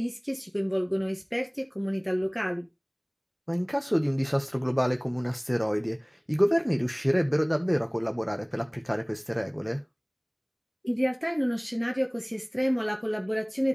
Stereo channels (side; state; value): both; identical; correlation 1.00